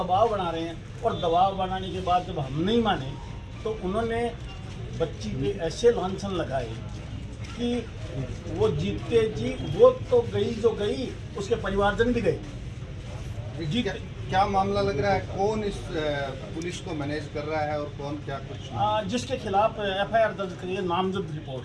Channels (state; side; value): identical; both; correlation 1.00